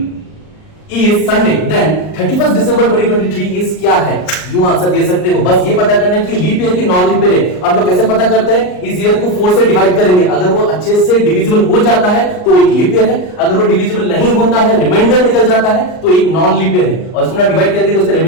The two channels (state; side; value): late; right; 39 ms